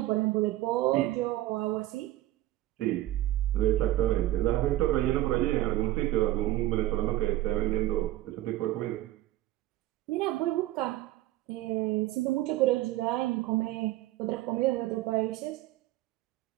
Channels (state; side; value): quieter; left; 15.7 dB